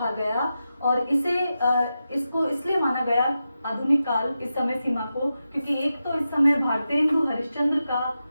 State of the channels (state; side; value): inverted; both; correlation -0.90